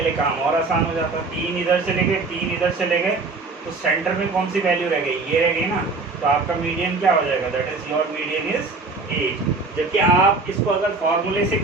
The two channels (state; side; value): quieter; left; 3.8 dB